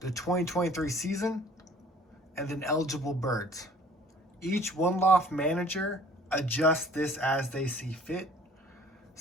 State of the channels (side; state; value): both; normal; correlation 0.52